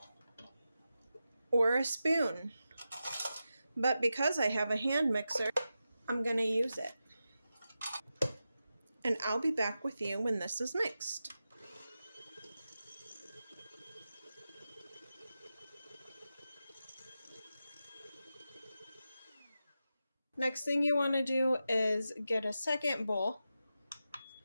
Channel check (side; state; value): both; inverted; correlation -0.91